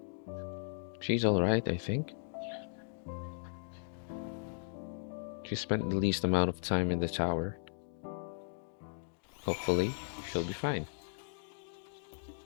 She's alright, I think. She spent the least amount of time in the tower. Hopefully, she'll be fine.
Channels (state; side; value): silent; right; digital silence